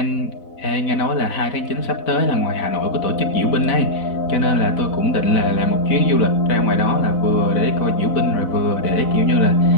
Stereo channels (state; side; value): late; right; 4.0 ms